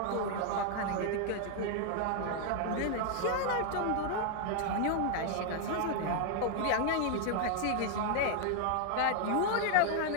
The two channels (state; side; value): different; both; correlation 0.00